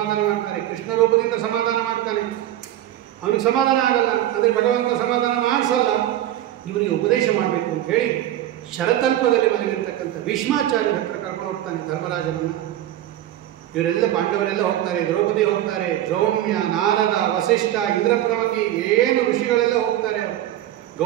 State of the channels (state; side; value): quieter; left; 13.0 dB